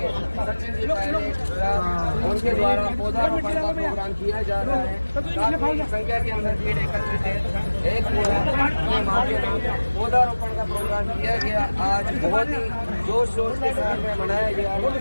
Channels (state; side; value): inverted; both; correlation -1.00